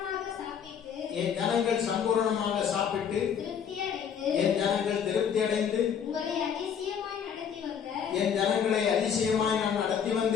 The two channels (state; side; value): quieter; right; 7.8 dB